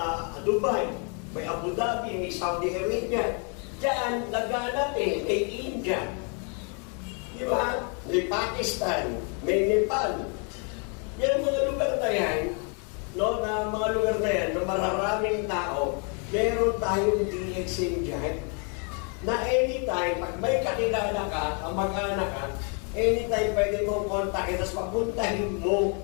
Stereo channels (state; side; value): quieter; right; 38.1 dB